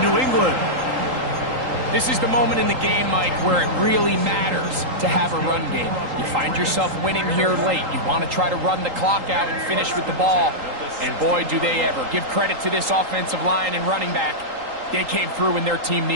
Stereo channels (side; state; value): left; late; 3.8 ms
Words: New England. This is the moment in the game, Mike, where it really matters to have a run game. You find yourself winning here late. You want to try to run the clock out and finish with the ball. And boy, do they ever. Give credit to this offensive line and running back. They came through when their team